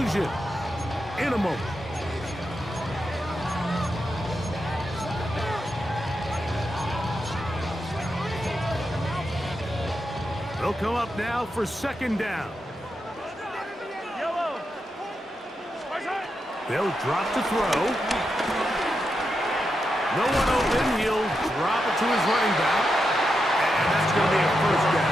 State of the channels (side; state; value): both; normal; correlation 0.86